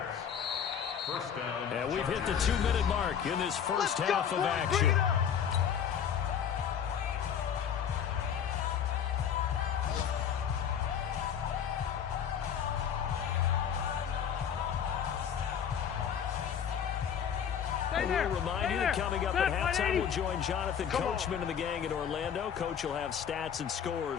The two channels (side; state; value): right; quieter; 8.3 dB